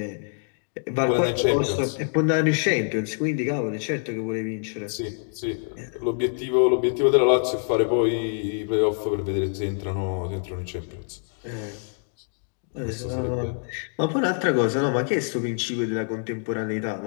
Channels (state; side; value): silent; right; 61 dB below the other